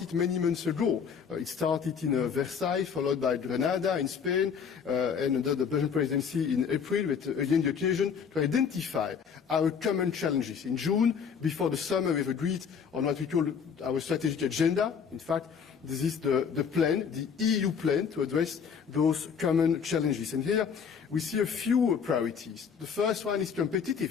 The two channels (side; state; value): right; quieter; 6.7 dB